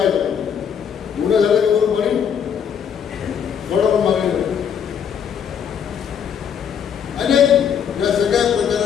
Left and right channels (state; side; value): quieter; right; 8.0 dB